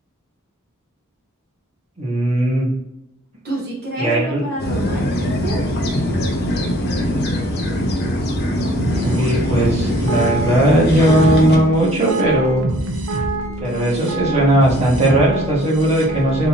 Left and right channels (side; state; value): both; normal; correlation 0.57